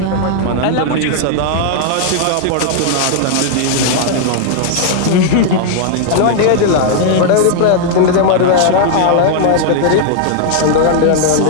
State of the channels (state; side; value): different; both; correlation -0.01